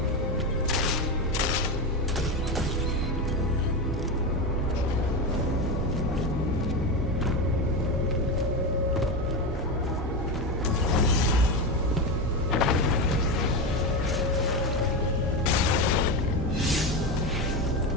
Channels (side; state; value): both; normal; correlation 0.16